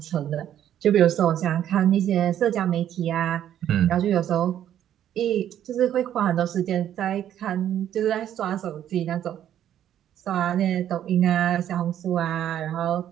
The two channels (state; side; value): quieter; left; 10.8 dB